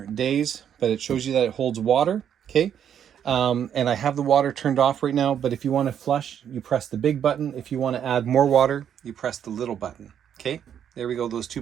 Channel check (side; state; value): left; quieter; 9.1 dB